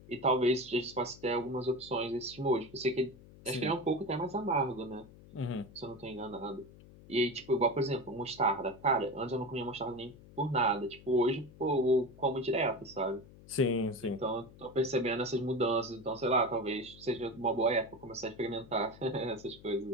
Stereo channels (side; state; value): left; noise; hum, 21 dB below the sound